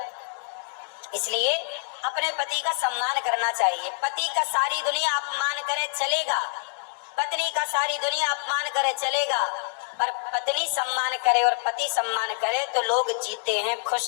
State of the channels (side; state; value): right; silent; digital silence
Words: इसलिए अपने पति का सम्मान करना चाहिए। पति का सारी दुनिया अपमान करे चलेगा, पत्नी का सारी दुनिया अपमान करे चलेगा, पर पत्नी सम्मान करे और पति सम्मान करे तो लोग जीते हैं,